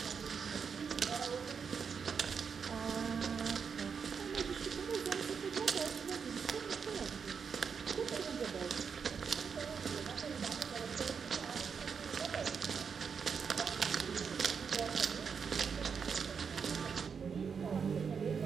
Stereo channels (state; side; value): quieter; left; 6.2 dB